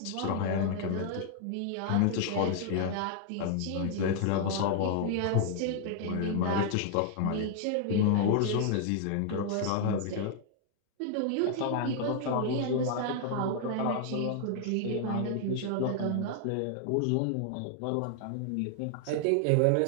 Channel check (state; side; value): different; both; correlation 0.00